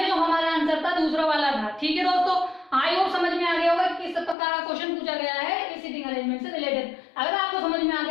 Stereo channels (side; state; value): right; drops out; at 4.4 s